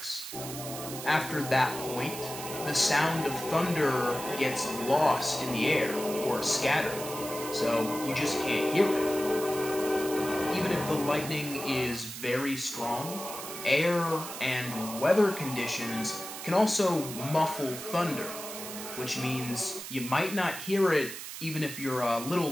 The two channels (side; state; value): right; noise; hiss, 9 dB below the sound